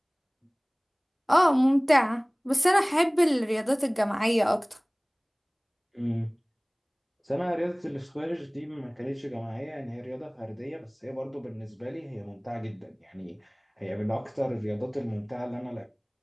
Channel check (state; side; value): identical; both; correlation 1.00